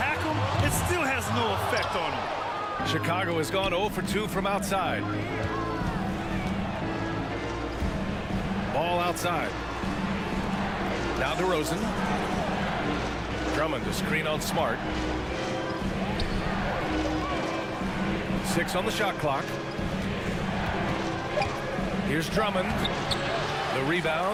him, it still has no effect on him. Chicago has gone 0 for 2 from outside. Ball outside. Now DeRozan. Drummond to screen on Smart. 6 on the shot clock. Here's Drummond. The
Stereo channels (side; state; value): both; identical; correlation 1.00